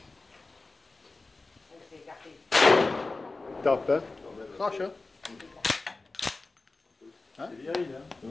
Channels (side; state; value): right; quieter; 3.5 dB